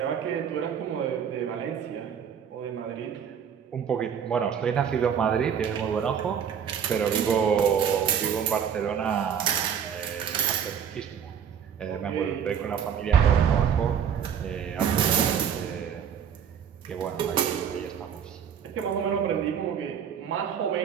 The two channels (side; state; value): left; quieter; 8.0 dB